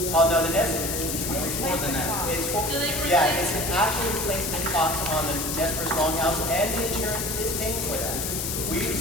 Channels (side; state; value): left; noise; hiss, 2 dB below the sound